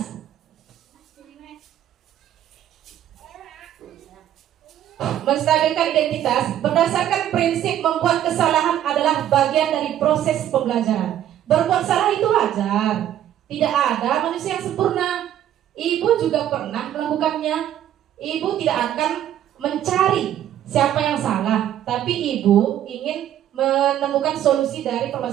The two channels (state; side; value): quieter; left; 11.4 dB